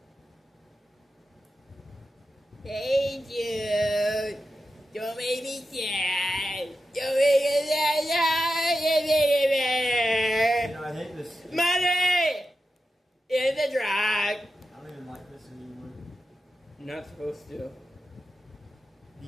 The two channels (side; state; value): both; normal; correlation 0.90